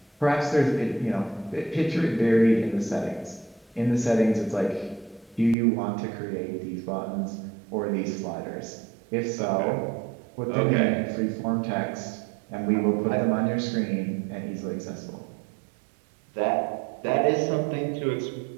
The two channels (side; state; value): left; drops out; at 5.6 s